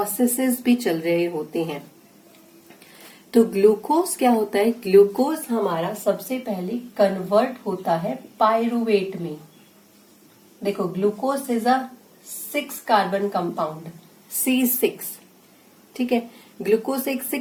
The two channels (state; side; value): identical; both; correlation 1.00